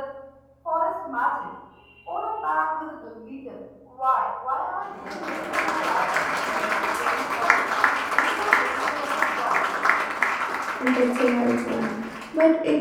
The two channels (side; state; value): both; identical; correlation 1.00